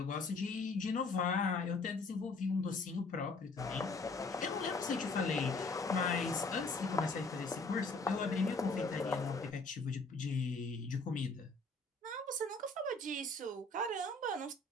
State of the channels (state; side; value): quieter; right; 3.3 dB